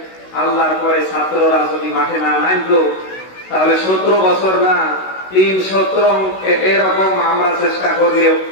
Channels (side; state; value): right; late; 16 ms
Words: আল্লাহর পরে ছাত্ররা যদি মাঠে না নামতো তাহলে 17 বছর না 3-17 এরকম আমরা চেষ্টা করলেও